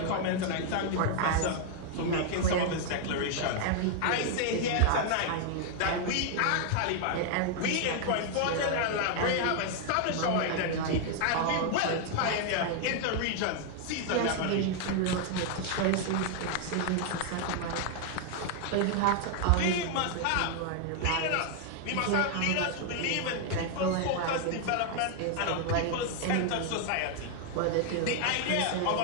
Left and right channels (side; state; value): both; different; correlation 0.00